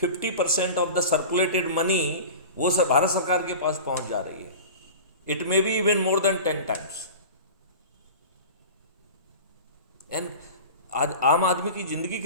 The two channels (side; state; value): both; inverted; correlation -0.35